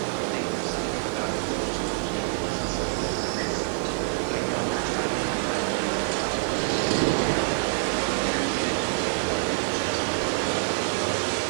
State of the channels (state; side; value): silent; left; 61 dB below the other